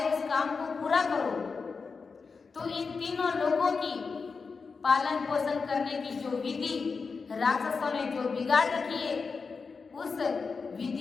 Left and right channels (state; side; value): quieter; right; 4.9 dB